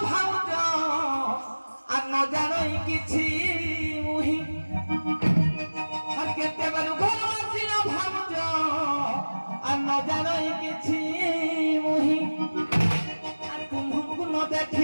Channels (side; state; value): both; inverted; correlation -1.00